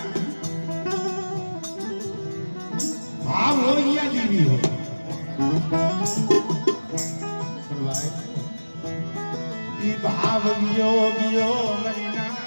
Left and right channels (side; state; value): both; inverted; correlation -1.00